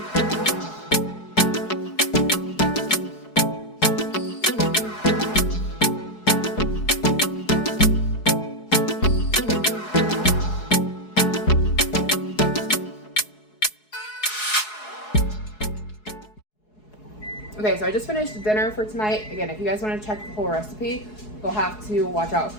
Okay, so I just finished dinner for tonight. Again, if you guys want to check the whole recipe, you'll have to watch out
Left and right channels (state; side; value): late; right; 4.7 ms